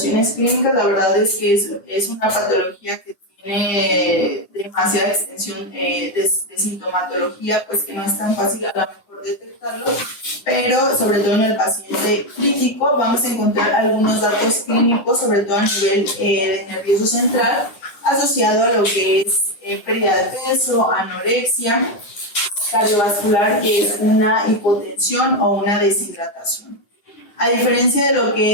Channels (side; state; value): right; late; 10 ms